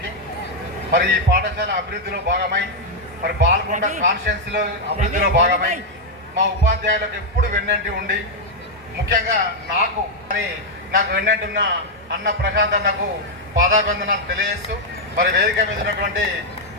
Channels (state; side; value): normal; both; correlation -0.01